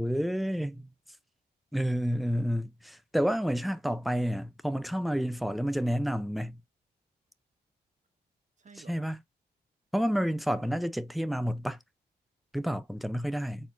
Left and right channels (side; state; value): both; normal; correlation 0.98